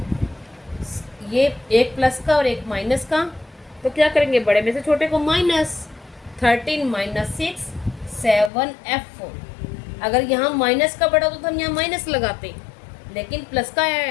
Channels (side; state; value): right; drops out; at 8.5 s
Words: ये एक प्लस का और एक माइनस का, तो क्या करेंगे, बड़े में से छोटे को माइनस, 13 - 6 7F। अगर यहाँ माइनस का बड़ा होता तो हम यहाँ माइनस लगाते, लेकिन प्लस का